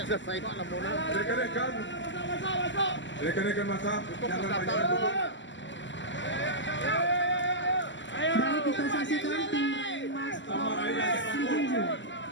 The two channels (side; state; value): right; late; 0.54 ms